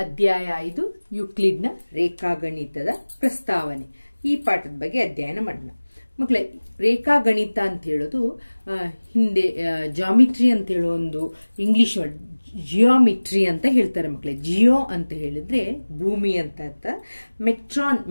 ಅಧ್ಯಾಯ 5 ಯುಕ್ಲಿಡ್ನ ರೇಖಾಗಣಿತದ ಪ್ರಸ್ತಾವನೆ ಈ ಪಾಠದ ಬಗ್ಗೆ ಅಧ್ಯಯನ ಮಾಡೋಣ. ಮಕ್ಕಳೇ, ರೇಖಾಗಣಿತ ಅಂತ ಹೇಳೋದು ಹಿಂದೆ ಜಾಮಿಟ್ರಿ ಅಂತ ಹೇಳೋ ಒಂದು ಇಂಗ್ಲಿಷ್ ವರ್ಡ್ ಜಿಯೋಮಿಟ್ರಿ ಅಂತ ಹೇಳ್ತಾರೆ. ಮಕ್ಕಳೇ, ಜಿಯೋ ಅಂತ ಹೇಳಿದ್ರೆ ಭೂಮಿ ಅಂತ ಅರ್ಥ.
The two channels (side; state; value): both; inverted; correlation -1.00